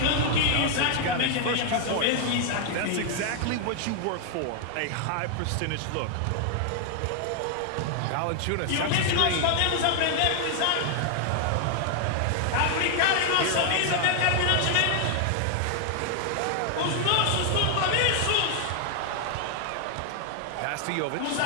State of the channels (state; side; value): different; both; correlation 0.00